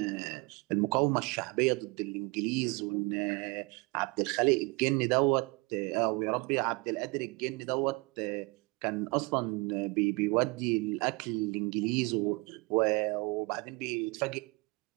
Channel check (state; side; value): quieter; left; 27.3 dB